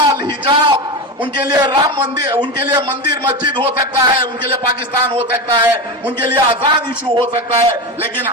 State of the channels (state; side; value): normal; both; correlation 0.20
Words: हिजाब, उनके लिए राम मंदिर, उनके लिए मंदिर मस्जिद हो सकता है, उनके लिए पाकिस्तान हो सकता है, उनके लिए आजाद इशू हो सकता है, लेकिन